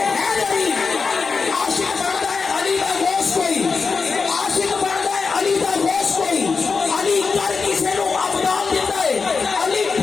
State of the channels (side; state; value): right; quieter; 4.9 dB